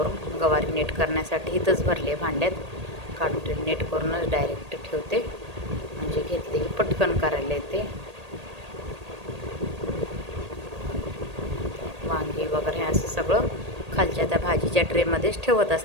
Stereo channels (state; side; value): late; left; 1.8 ms